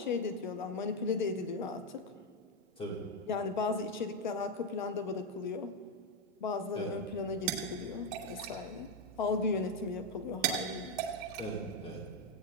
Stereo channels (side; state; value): both; normal; correlation 0.06